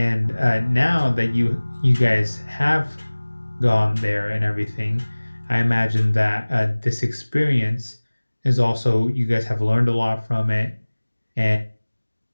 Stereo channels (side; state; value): both; inverted; correlation -1.00